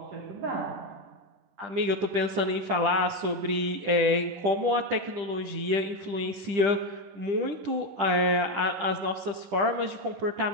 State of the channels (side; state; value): left; late; 10 ms